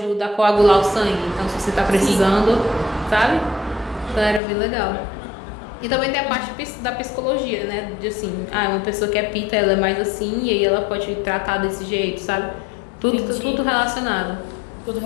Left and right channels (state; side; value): drops out; right; at 4.4 s